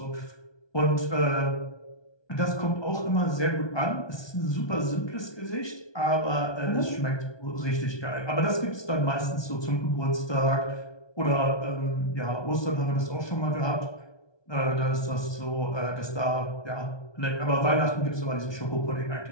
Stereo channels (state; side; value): late; right; 1.2 ms